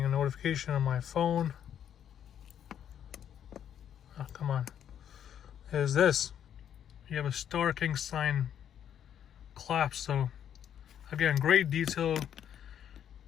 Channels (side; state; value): right; quieter; 9.5 dB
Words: a notification on my phone. Oh, come on. Is this. You have a Star King sign clasp. So again, great detail,